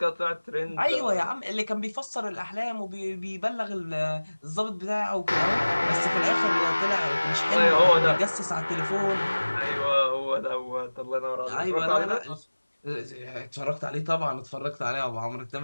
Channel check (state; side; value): inverted; both; correlation -1.00